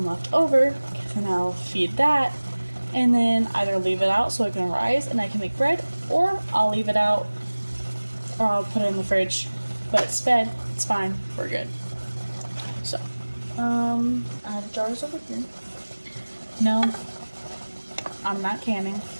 left over. And I'll feed that. And then either leave it out so it can rise and I can make bread. Or I'll leave it out. Or I'll put it in the fridge. But it's fed. It's fine. We're good. So. I have jars over here. No. I'm not canning,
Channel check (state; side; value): inverted; both; correlation -1.00